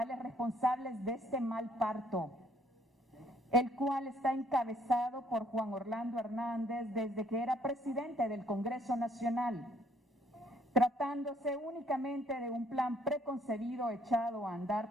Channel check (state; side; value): normal; both; correlation 0.64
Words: responsables de este mal parto, el cual está encabezado por Juan Orlando Hernández desde que era presidente del Congreso Nacional, tratándose únicamente de un plan preconcebido echado a